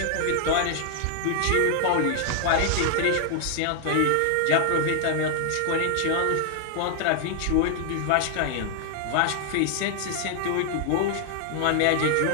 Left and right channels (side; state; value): both; different; correlation 0.00